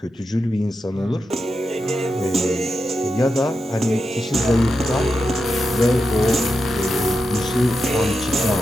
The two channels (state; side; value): normal; both; correlation 0.88